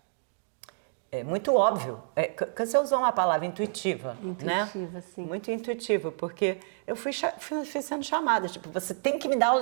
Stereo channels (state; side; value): silent; left; digital silence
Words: muito óbvio. Você usou uma palavra intuitiva, né? Intuitiva, sim. Muito intuitivo, porque eu fui sendo chamada, tipo, você tem que me dar aula